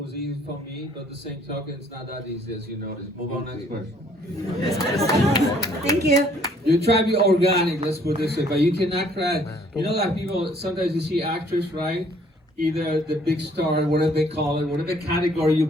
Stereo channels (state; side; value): normal; both; correlation 0.61